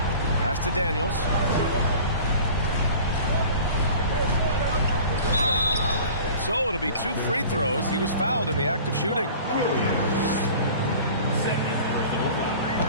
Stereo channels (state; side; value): inverted; both; correlation -0.43